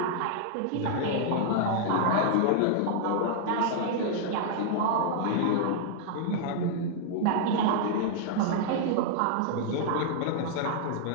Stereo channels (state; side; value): different; both; correlation -0.01